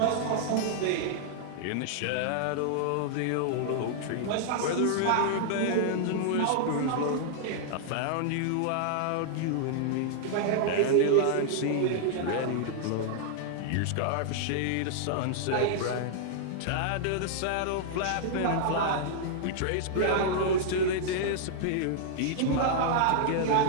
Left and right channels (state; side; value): different; both; correlation -0.01